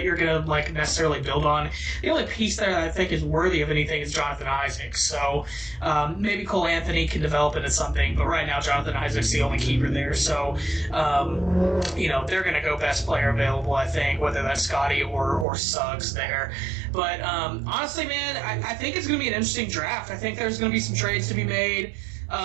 you're going to necessarily build on. The only piece there that I think is worthy of anything is Jonathan Isaac. So maybe Cole Anthony can develop into something, but right now Jonathan Isaac's the only keeper there. So they're going to go best player available, I think, whether that's Scotty or Suggs there. But honestly, man, I think it's going to be an interesting draft. I think there's going to be some trades to be made.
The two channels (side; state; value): left; drops out; at 15.5 s